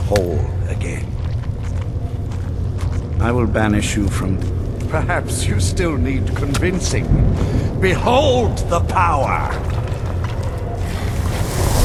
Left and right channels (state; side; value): identical; both; correlation 1.00